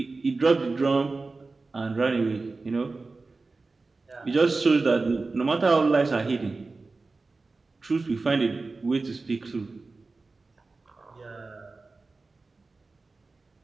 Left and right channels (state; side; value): quieter; left; 3.7 dB